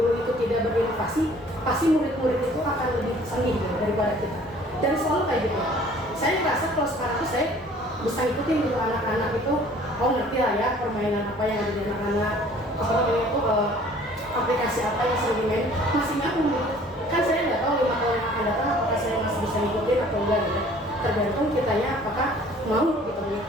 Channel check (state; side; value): normal; both; correlation 0.53